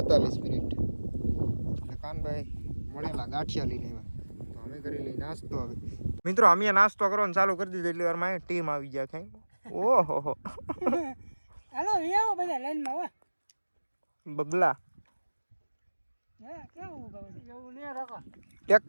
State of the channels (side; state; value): both; inverted; correlation -1.00